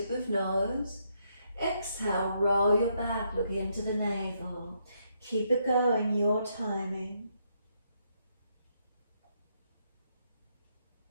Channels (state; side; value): inverted; both; correlation -0.76